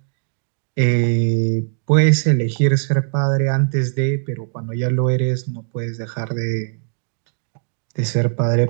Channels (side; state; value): left; silent; digital silence